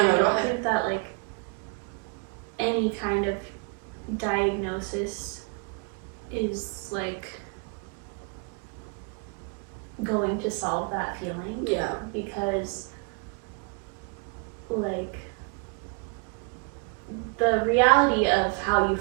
I don't think that, like, any kind of diagnosis is, like, going to solve that feeling. Yeah. Because, like... the reality of how you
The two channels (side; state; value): left; quieter; 35.0 dB